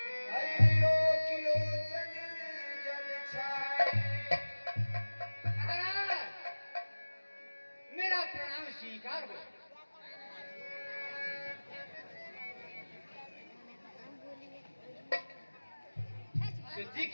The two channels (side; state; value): both; inverted; correlation -1.00